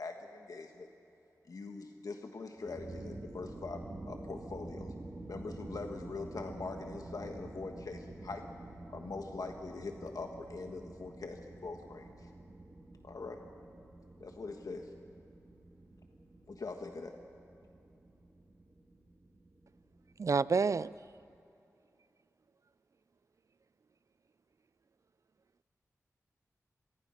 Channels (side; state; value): both; normal; correlation 0.78